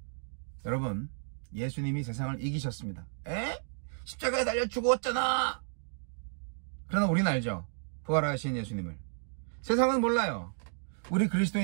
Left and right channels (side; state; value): left; silent; digital silence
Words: 여러분, 예수님이 세상을 이기셨습니다. 십자가에 달려 죽었잖아. 그러나 우리는 알죠. 부활하신 예수님을. 세상은 몰라요. 우리